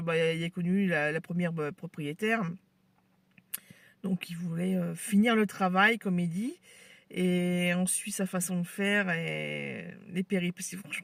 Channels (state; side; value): identical; both; correlation 1.00